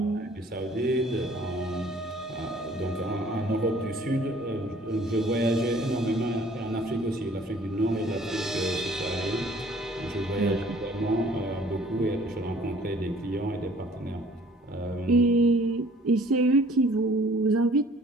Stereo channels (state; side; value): normal; both; correlation 0.55